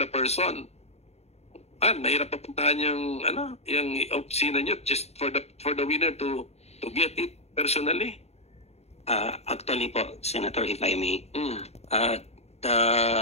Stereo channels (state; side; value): late; right; 0.31 ms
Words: person. Mahirap papuntahan yung opisina nyo just for the winner to get it personally. Actually po, Senator, if I may,